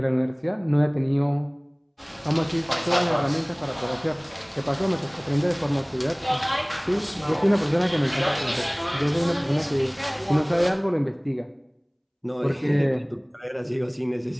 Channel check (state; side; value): identical; both; correlation 1.00